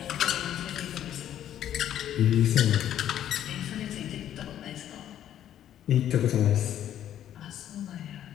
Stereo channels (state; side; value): quieter; right; 11.0 dB